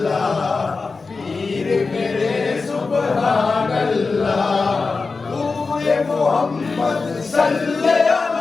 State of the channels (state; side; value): quieter; right; 4.2 dB